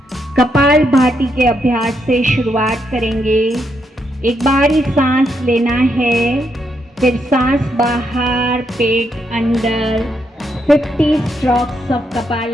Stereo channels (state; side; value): normal; both; correlation 0.79